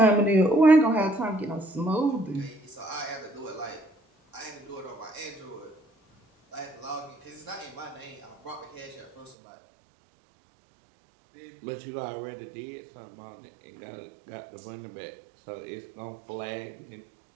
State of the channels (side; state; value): left; drops out; at 9.3 s